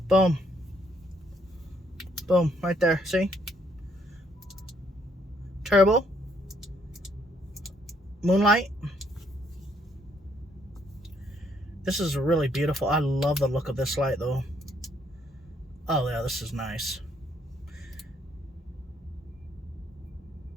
boom, boom, right there. See, turbo, moonlight. This is really beautiful. I love the look of this light, though. Oh yeah, this is nice.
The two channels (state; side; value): normal; both; correlation 0.70